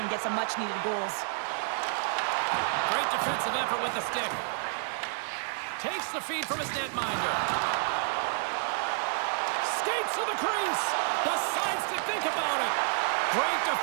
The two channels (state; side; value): silent; left; digital silence